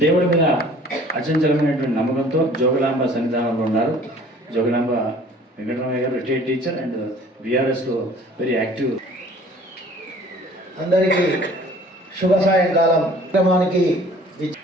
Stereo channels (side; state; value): both; normal; correlation 0.51